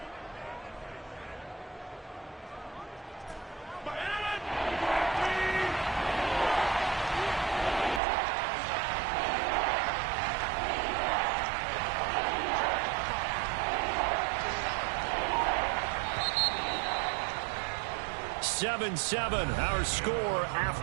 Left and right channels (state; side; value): drops out; left; at 8.0 s